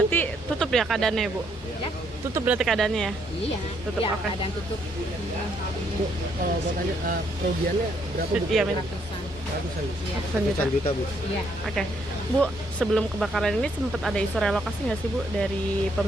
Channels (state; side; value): normal; both; correlation 0.71